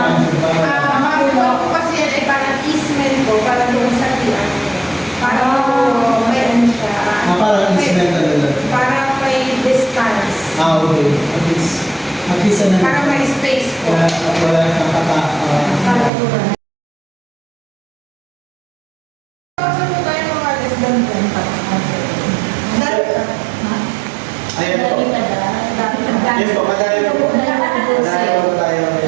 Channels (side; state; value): left; drops out; at 16.1 s